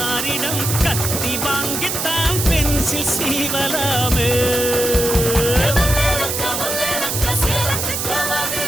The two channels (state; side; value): noise; right; hiss, 2 dB below the sound